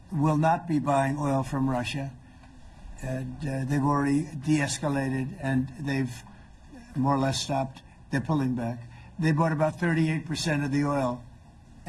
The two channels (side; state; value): both; identical; correlation 1.00